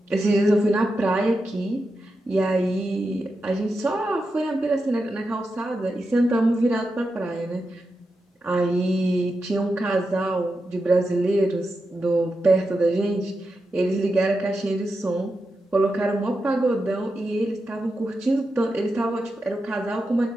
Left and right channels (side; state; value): both; normal; correlation 0.88